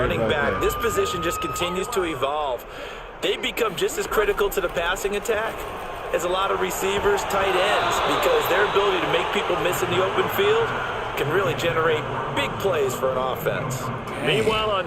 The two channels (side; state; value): both; identical; correlation 1.00